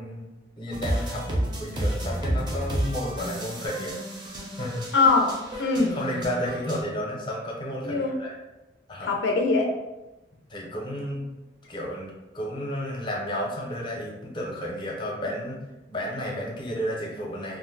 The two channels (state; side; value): normal; both; correlation 0.36